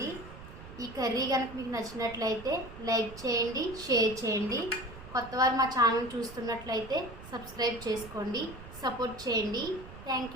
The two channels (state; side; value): noise; right; rumble, 15 dB below the sound